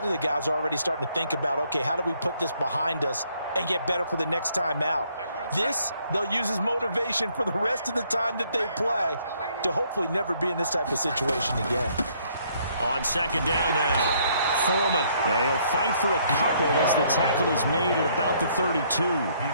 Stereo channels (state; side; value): inverted; both; correlation -0.67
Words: of the guys are already starting to think about, okay, how do we put this behind us and get better for the next time out? This, they'll use as motivation for the rest of the time that they play to hopefully never be in this type of situation again. On second down now, Foreman. Yeah, he'll fight for a couple as the tackle is made at about the 32.